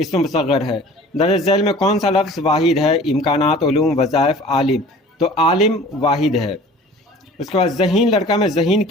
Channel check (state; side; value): normal; both; correlation 0.45